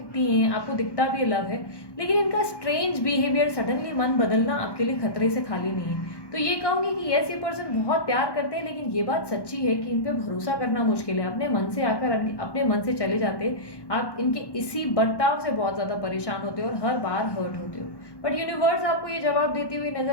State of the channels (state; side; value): late; right; 1.1 ms